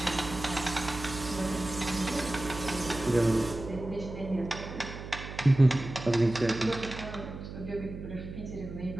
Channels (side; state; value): right; noise; hum, 10 dB below the sound